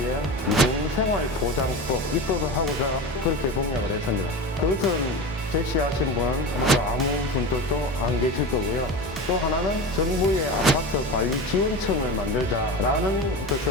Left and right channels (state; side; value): normal; both; correlation 0.27